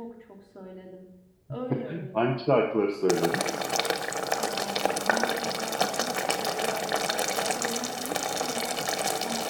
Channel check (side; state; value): both; identical; correlation 1.00